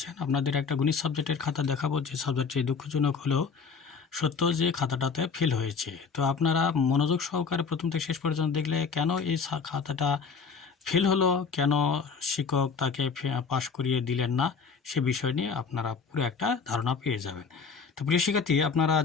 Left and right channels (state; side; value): quieter; right; 5.5 dB